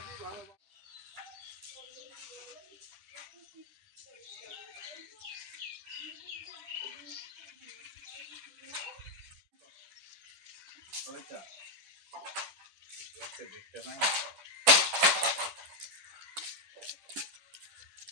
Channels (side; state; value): left; late; 10 ms